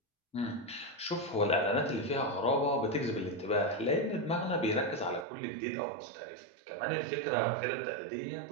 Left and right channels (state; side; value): drops out; left; at 5.2 s